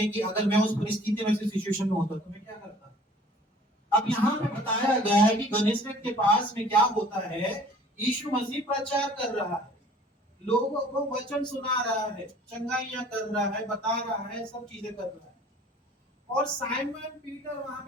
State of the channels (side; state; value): both; normal; correlation 0.51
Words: कि अगर मैं उस परिस्थिति में, सिचुएशन में होता तो मैं क्या करता। अब यहाँ पे बताया गया है कि गनेसरेत के पास में क्या होता है, यीशु मसीह प्रचार कर रहा है, लोगों को वचन सुना रहा है, चंगाइयां कर रहा है, बता रहा है, सब चीजें कर रहा है। और साइमन पीटर वहां